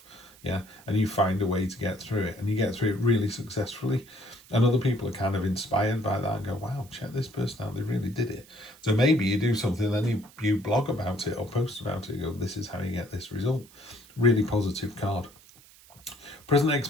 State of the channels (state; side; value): noise; right; hiss, 24 dB below the sound